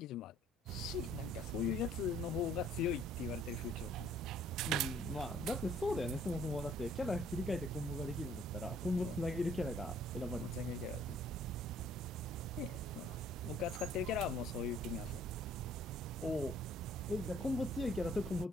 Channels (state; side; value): normal; both; correlation 0.59